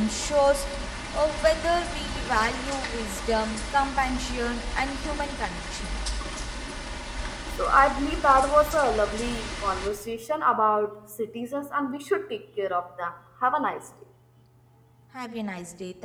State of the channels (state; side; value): identical; both; correlation 1.00